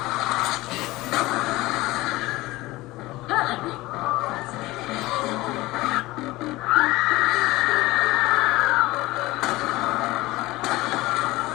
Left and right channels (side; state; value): right; quieter; 19.4 dB